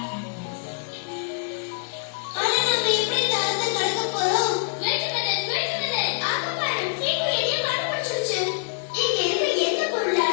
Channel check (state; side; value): silent; right; digital silence